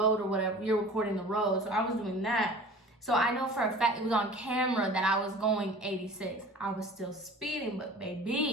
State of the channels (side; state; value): both; normal; correlation 0.43